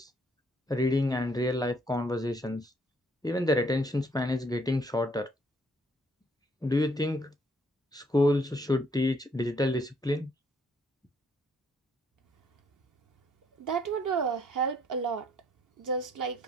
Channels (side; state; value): both; normal; correlation 0.66